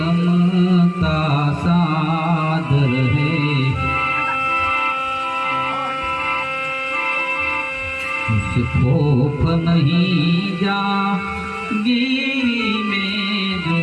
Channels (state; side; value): identical; both; correlation 1.00